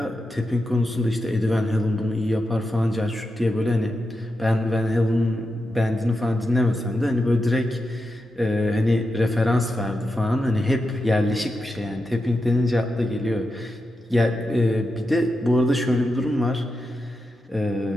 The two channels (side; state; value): both; normal; correlation 0.88